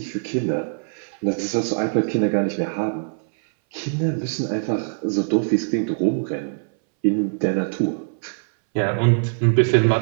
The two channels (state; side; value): silent; left; 62 dB below the other